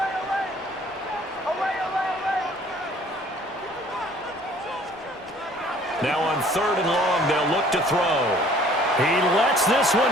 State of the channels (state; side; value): normal; both; correlation 0.55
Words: Now on 3rd and long, they'll look to throw. He lets this